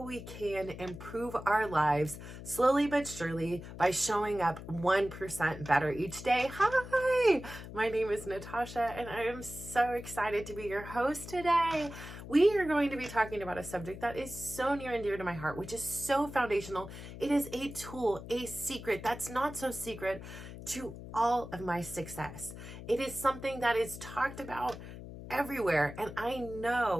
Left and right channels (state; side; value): noise; left; hum, 12 dB below the sound